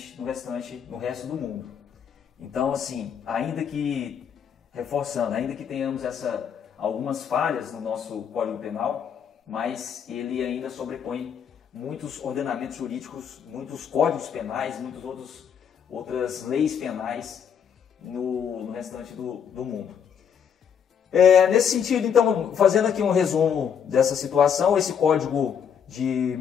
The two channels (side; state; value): right; quieter; 7.7 dB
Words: no resto do mundo. Então, assim, ainda que tenhamos algumas falhas no nosso Código Penal, mas ele ainda sobrepõe muitos ordenamentos jurídicos, muitos códigos penais, muitas outras leis penais no restante do mundo. Nesse sentido, então, fazendo aqui um resumo dessa situação, esse código de